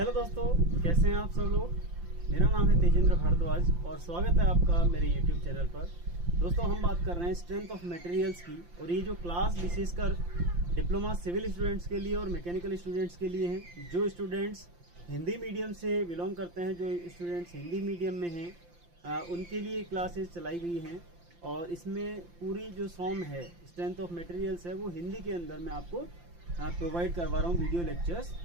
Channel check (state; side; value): late; left; 5.8 ms